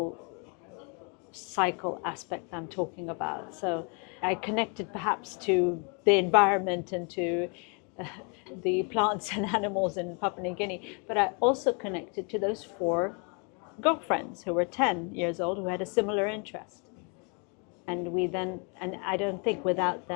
cycle aspect I'm talking about. So I connected perhaps to the environment and to the plants and animals in Papua New Guinea, but I also connected to those 4 girlfriends who were 10 years old who had a similar interest. And I don't think without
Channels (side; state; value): right; quieter; 35.9 dB